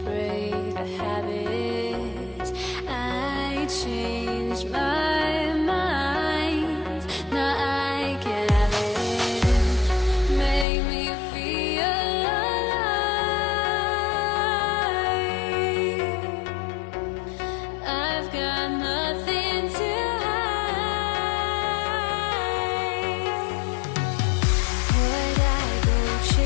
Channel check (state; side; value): drops out; right; at 10.7 s